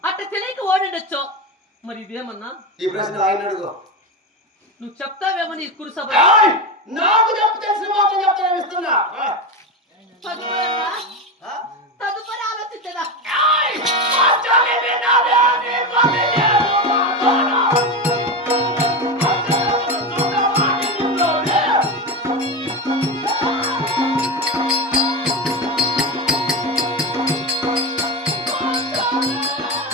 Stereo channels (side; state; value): both; normal; correlation 0.18